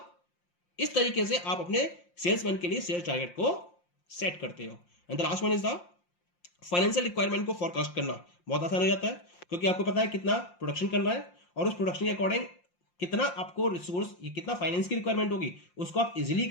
इस तरीके से आप अपने सेल्समैन के लिए सेल्स टारगेट को सेट करते हो। And the last one is the financial requirement को फोरकास्ट करना। बहुत आसान हो जाता है, क्योंकि आपको पता है कितना प्रोडक्शन करना है और उस प्रोडक्शन के अकॉर्डिंग कितना आपको रिसोर्स, कितना फाइनेंस की रिक्वायरमेंट होगी, उसको आप इजीली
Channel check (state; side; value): late; right; 5.7 ms